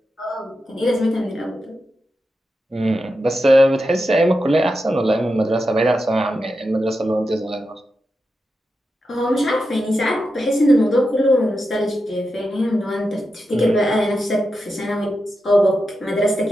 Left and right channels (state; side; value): normal; both; correlation 0.89